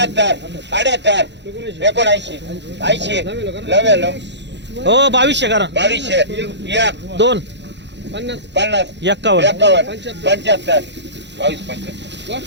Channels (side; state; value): left; late; 0.52 ms